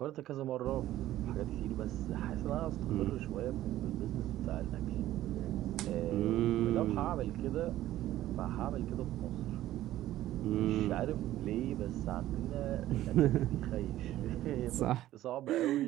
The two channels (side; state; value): left; quieter; 14.2 dB